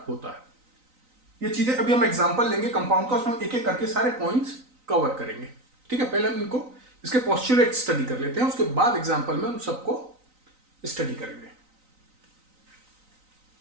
होता है। ये चीजें अभी हम एग्जांपल लेंगे कंपाउंड का, उसमें एक एक करके सारे पॉइंट्स कवर करेंगे। ठीक है, पहले हम इनको इसके पोस्टुलेट स्टडी कर लेते हैं, उसके बाद एग्जांपल में हम सबको स्टडी करेंगे।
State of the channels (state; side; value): late; left; 3.9 ms